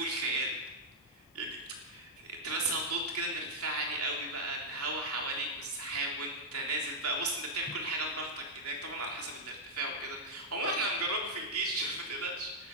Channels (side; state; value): both; normal; correlation -0.05